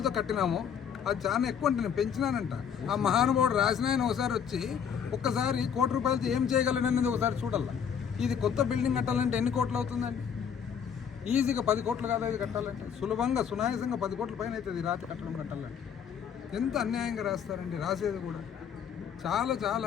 కట్టినాము, అది చాలా ఎక్కువ అంటే నేను పెంచినానంట. ఆ మహానుభావుడు రాసిన ఆయన ఒకసారి వచ్చి ఒక్కసారి ₹1 కోటి ఏం చేయగలననేది ఒకసారి చూడాల. ఇది కొత్త బిల్డింగ్ కట్టాలంటే ఎన్ని కోట్లు అవుతుందండి? ఈజీగా 10 కోట్లు కాదు ఇది కట్టాలంటే, సులభంగా సునాయాసంగా 10 కోట్ల పైన అవుతుంది రాత్రి కట్టడం కట్టాలంటే. ఎంత అన్యాయంగా రాస్తారండి రాసేది కూడా.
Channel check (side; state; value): right; quieter; 7.7 dB